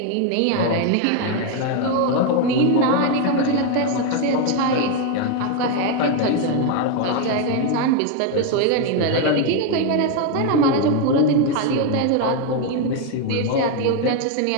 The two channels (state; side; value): different; both; correlation 0.01